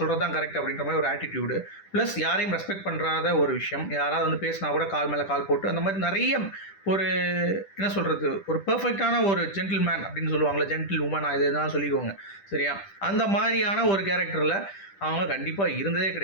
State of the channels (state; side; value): late; right; 10 ms